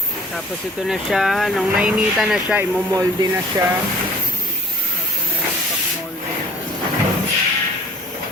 Tapos ito na siya. Nung nainita na siya, imomolde na siya. Ito na yung pag-molde na.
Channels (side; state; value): both; normal; correlation 0.49